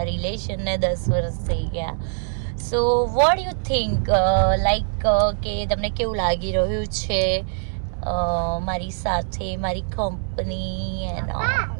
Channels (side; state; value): left; silent; 63 dB below the other